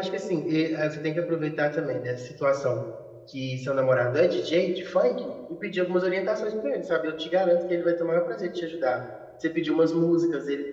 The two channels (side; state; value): both; identical; correlation 1.00